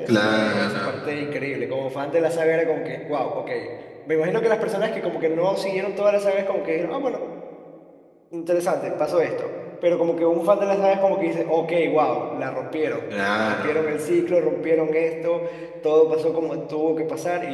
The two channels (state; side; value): identical; both; correlation 1.00